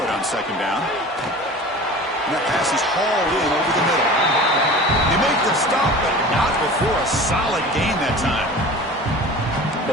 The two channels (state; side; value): normal; both; correlation 0.39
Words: on second down. And that pass is hauled in over the middle. They make the stop, but not before a solid gain that time.